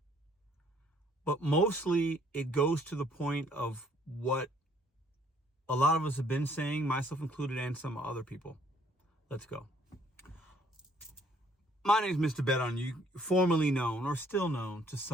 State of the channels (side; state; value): both; normal; correlation 0.63